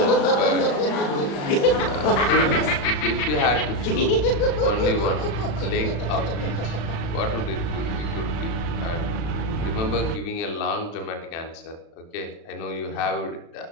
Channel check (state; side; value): late; right; 35 ms